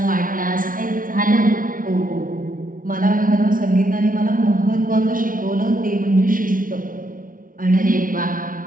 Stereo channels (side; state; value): left; late; 0.39 ms